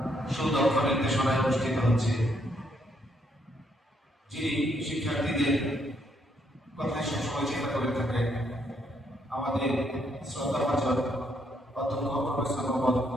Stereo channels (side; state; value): both; normal; correlation 0.73